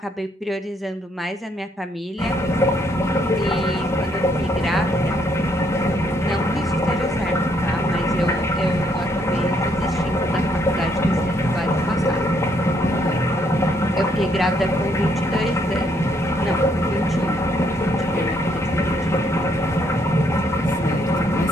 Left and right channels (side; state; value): both; normal; correlation 0.71